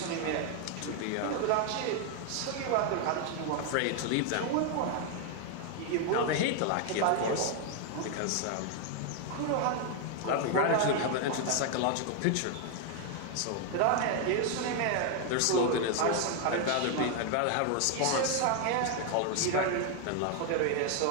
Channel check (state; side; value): different; both; correlation 0.00